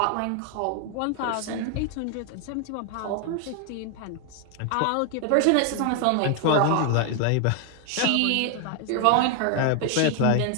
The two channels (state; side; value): different; both; correlation 0.00